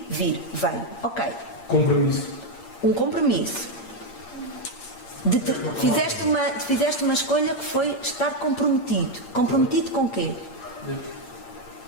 vir. Veio. Ok. Compromisso. Um compromisso. Fizeste uma escolha que foi estar comprometido. Comprometido com quê?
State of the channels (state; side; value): late; right; 8.7 ms